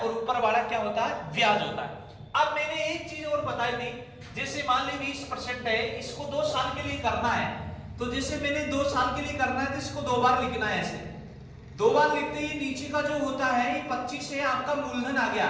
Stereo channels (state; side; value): identical; both; correlation 1.00